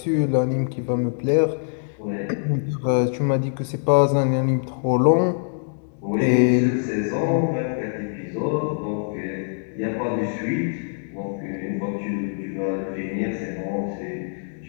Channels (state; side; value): silent; right; digital silence